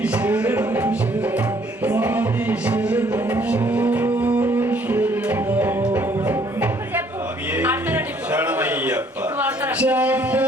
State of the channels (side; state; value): both; normal; correlation 0.62